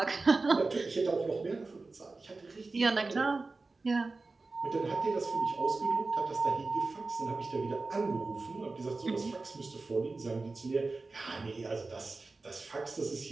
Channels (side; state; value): left; quieter; 3.6 dB